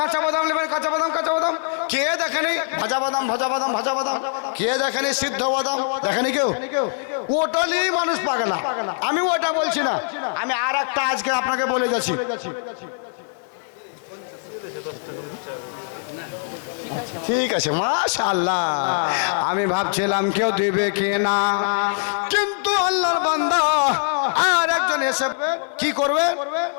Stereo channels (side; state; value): right; silent; digital silence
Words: বাদাম নেবেন, কাঁচা বাদাম, কাঁচা বাদাম। কে দেখেনি ভাজা বাদাম, ভাজা বাদাম, ভাজা বাদাম? কে দেখেনি সিদ্ধ বাদাম? দেখেনি কেউ? ওটালি মানুষ পাগলা। আমি ওটা বলছি না, আমি আর একটা আজকে আপনাকে বলে যাচ্ছি। ঠিক আছে, মাশাআল্লাহ। আমি ভাবছিলাম কেউ দিবে কি না, কিন্তু আল্লাহর বান্দা আর একজন এসে কি করবে?